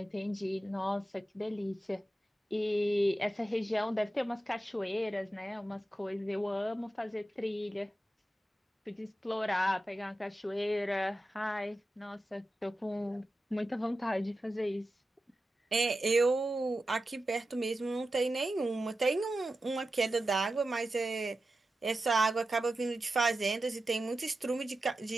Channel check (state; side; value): normal; both; correlation 0.92